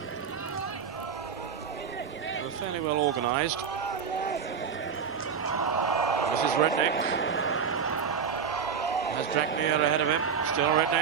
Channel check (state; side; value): quieter; left; 6.7 dB